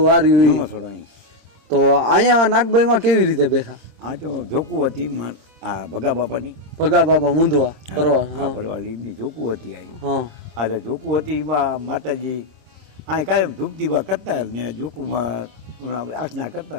વાર્યું ઈ. જૂનો થોડો અહીં તો અહીંયા નાગબાઈમાં કેવી રીતે બેઠા આ તો જોકું હતી આ ભગા બાપાની ભગા બાપા મુંદવા કરવા આ ભરવાડી એમની જોકું હતી અહીં હા આ જે જોકું હતી એમાં માતાજી આ કાયમ ધૂપદીવા કરતા ને જોકુમાં આસના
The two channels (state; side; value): late; left; 26 ms